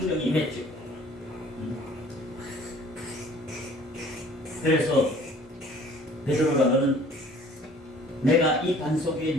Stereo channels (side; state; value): both; normal; correlation 0.52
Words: 임했죠. 그래서 베드로가 너는 내가 이 반석 위에